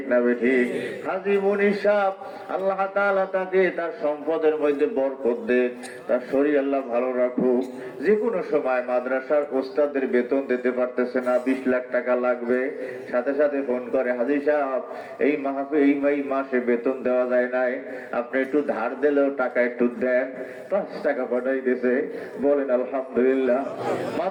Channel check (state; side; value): identical; both; correlation 1.00